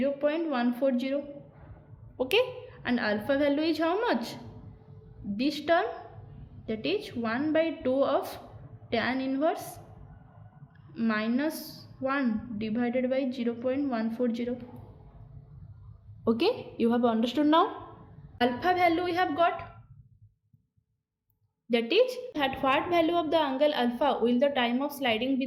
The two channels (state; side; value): identical; both; correlation 1.00